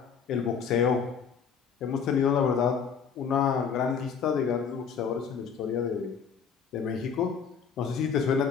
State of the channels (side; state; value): right; quieter; 6.6 dB